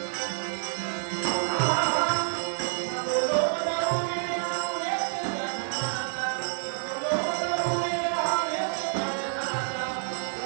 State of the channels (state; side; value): silent; left; digital silence